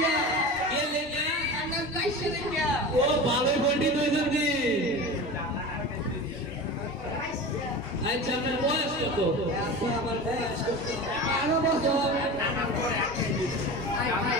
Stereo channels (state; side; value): normal; both; correlation 0.31